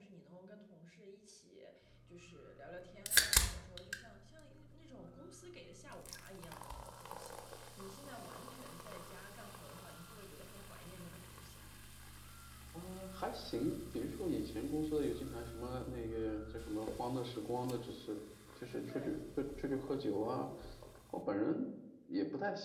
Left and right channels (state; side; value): identical; both; correlation 1.00